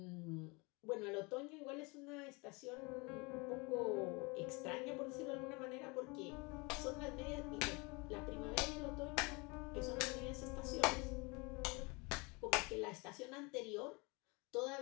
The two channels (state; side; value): quieter; right; 28.0 dB